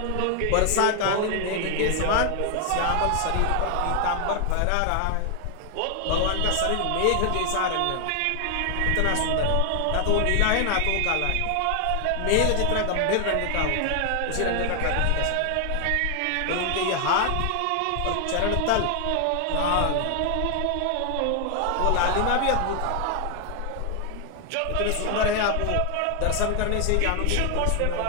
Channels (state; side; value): different; both; correlation 0.00